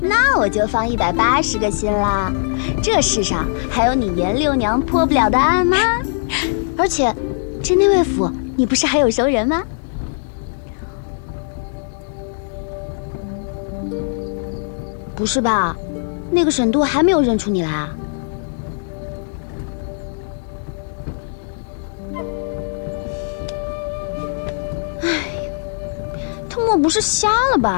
我就放180个心啦。这世上还有你严六娘破不了的案吗？而且，这内卫府你不是还有熟人吗？不是吧？那个沈都还没有认出你来啊？不是瞎了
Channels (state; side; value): silent; right; 64 dB below the other